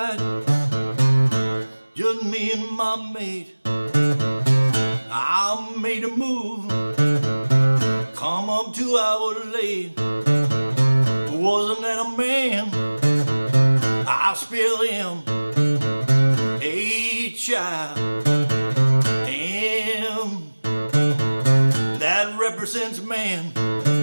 just me and my mate. I made a move, come up 2 hours late. Wasn't that a man? I spilled him a child, and that represents man.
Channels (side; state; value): both; inverted; correlation -1.00